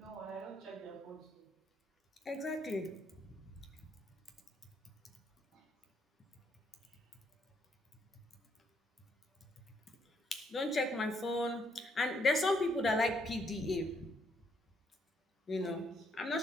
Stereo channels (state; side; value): normal; both; correlation 0.72